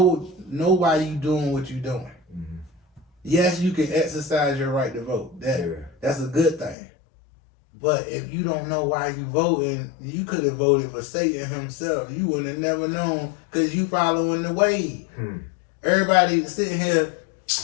why you doing what you doing. Yes, you can exercise your right to vote. That's a good thing. But if you don't know why you voting, you could have voted for Satan himself. You would have never known because you following the wave. Everybody sitting here,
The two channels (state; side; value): drops out; right; at 6.8 s